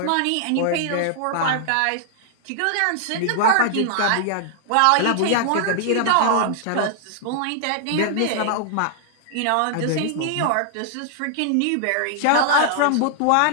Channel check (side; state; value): both; different; correlation -0.01